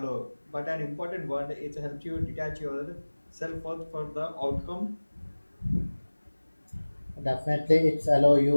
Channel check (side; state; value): both; inverted; correlation -1.00